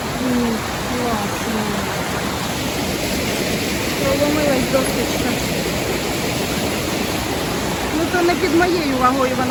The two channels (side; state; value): both; identical; correlation 1.00